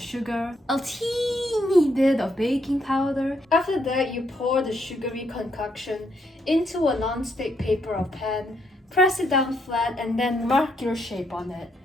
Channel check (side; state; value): both; normal; correlation 0.75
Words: a teeny bit of baking powder. After that, you pour the sugary concoction into a non-stick paper or pan, press it down flat, and then mark your shape on it.